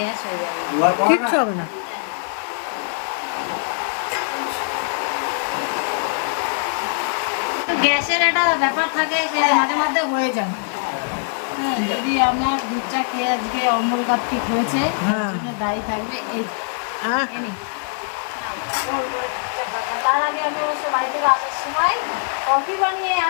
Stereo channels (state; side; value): silent; right; 64 dB below the other